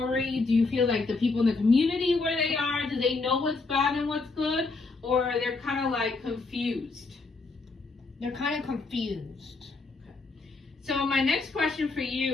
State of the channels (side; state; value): right; quieter; 3.8 dB